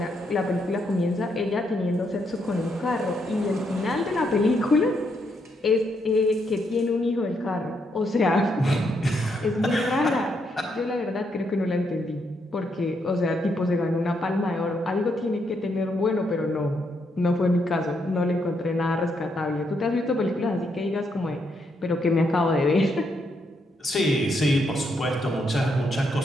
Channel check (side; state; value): both; normal; correlation 0.77